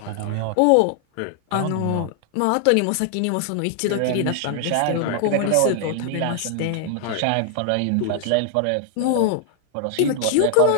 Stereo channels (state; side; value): different; both; correlation 0.00